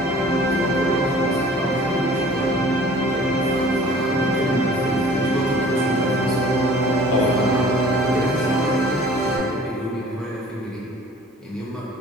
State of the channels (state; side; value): normal; both; correlation 0.49